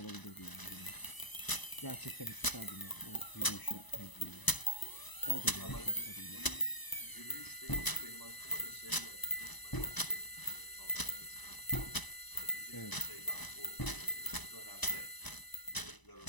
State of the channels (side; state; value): right; late; 1.0 ms